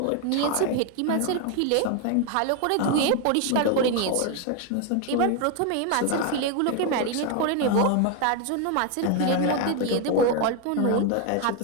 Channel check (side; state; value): both; different; correlation 0.01